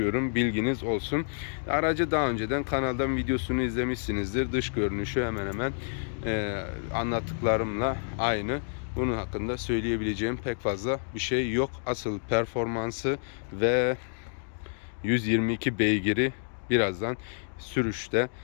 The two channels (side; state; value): right; silent; digital silence